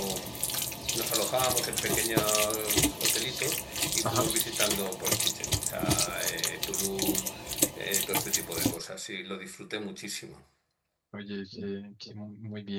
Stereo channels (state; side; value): identical; both; correlation 1.00